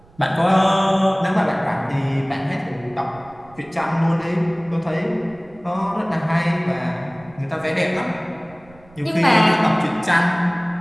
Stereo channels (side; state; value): right; noise; rumble, 26 dB below the sound